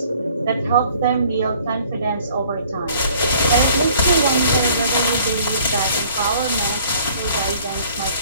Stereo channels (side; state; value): both; inverted; correlation -0.56